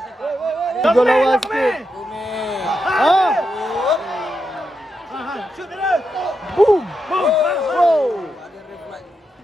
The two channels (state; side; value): normal; both; correlation 0.85